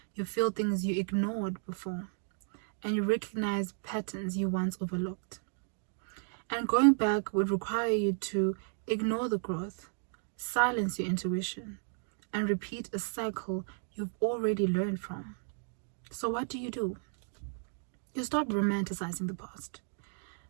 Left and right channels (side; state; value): left; silent; 55 dB below the other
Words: You feel things you ignored before. And you recognize patterns you once overlooked. And going back would require you to ignore the growth, silence your intuition, and repeat a cycle you've already learned from. So what do? You stop romanticizing the past.